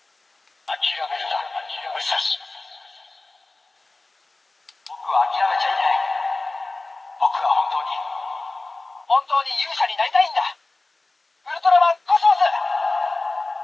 諦めるな武蔵。僕は諦めちゃいない。僕は本当に勇者になりたいんだ。ウルトラマンコスモス。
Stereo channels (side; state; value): right; quieter; 3.2 dB